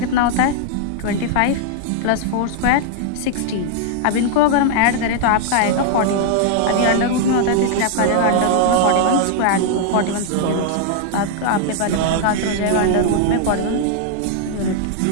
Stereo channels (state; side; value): different; both; correlation 0.00